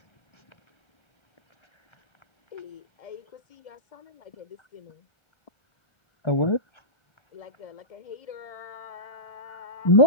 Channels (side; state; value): right; late; 1.3 ms